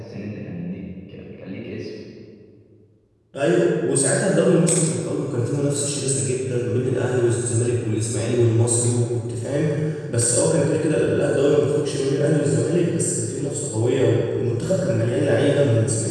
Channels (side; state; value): both; identical; correlation 1.00